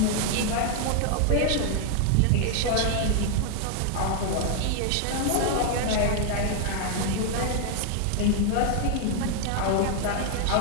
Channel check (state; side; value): different; both; correlation 0.00